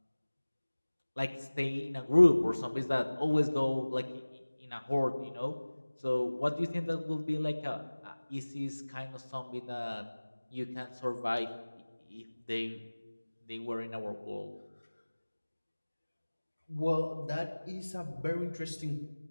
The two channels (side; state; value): both; inverted; correlation -1.00